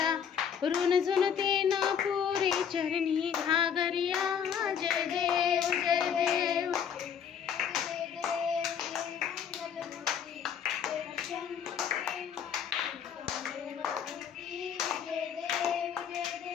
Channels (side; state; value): right; quieter; 7.9 dB